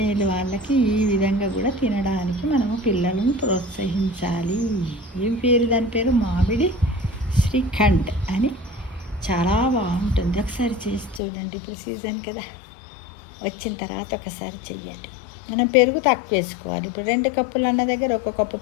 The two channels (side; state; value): right; drops out; at 11.2 s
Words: వాళ్ళకి ఈ విధంగా కూడా తినడానికి మనము పిల్లలను ప్రోత్సహించాలి. దాని పేరు మామిడి శ్రీఖండ్ అని. చాలా బాగుంటుంది. ఒకసారి చేసి చూడండి. ఇప్పుడు సీజన్ కదా, వచ్చిన తర్వాత ఒకసారి చెయ్యండి. మనం పెరుగు తక్కువ వేసుకోవాలి. ఇప్పుడు 2 కప్పులు అన్న దగ్గర 1 కప్పు